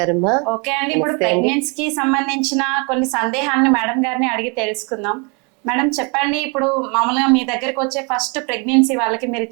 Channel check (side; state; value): left; quieter; 32.8 dB